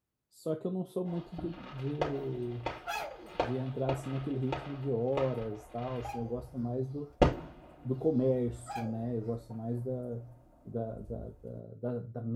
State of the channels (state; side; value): identical; both; correlation 1.00